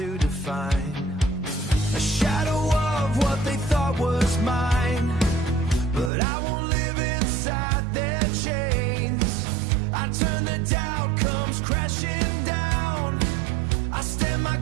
define a shadow of what they thought was mine. But I won't live inside their chains. I turn, the doubt comes crashing down. I stand my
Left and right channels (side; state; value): left; drops out; at 6.1 s